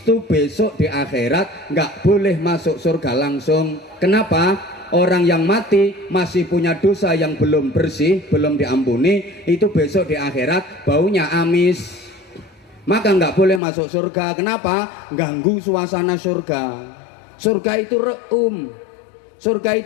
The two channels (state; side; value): drops out; right; at 13.6 s